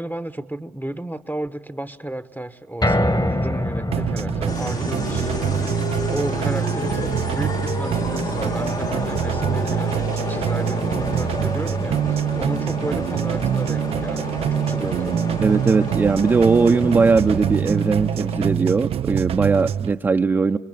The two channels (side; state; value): left; quieter; 4.2 dB